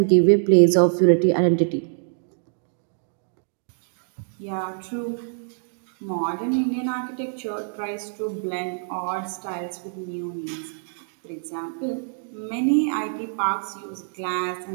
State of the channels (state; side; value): silent; left; digital silence